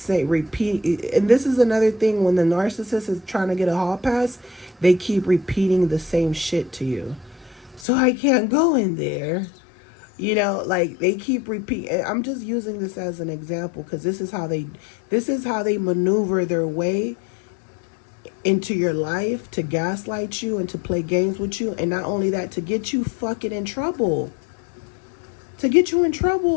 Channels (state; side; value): drops out; right; at 7.9 s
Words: repeat, and this is another thing when the narcissist is trying to get a hall pass, they keep repeating the same shit to you. So I can't go in there. You know, like they keep repeating. I'm just using this as an example because this is how they maneuver their way into your life to gaslight you and to play games with you, and not only that, to get you fucking in trouble. To get you in